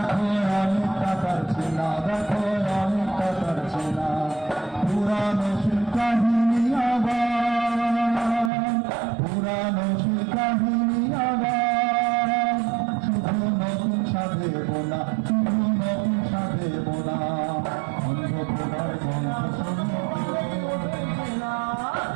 অনেকটা তার চেনা, দেখো অনেকটা তার চেনা। পুরানো সে কাহিনী আবার, পুরানো সে কাহিনী আবার, শুধু নতুন সাধেব না, শুধু নতুন সাধেব না। অন্ধকার গল্প শোনো না।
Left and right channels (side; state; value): left; drops out; at 8.5 s